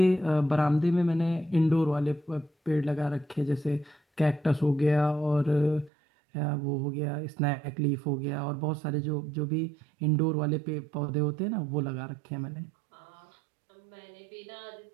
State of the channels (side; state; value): left; drops out; at 5.9 s